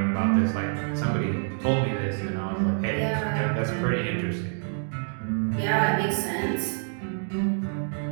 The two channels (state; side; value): silent; left; digital silence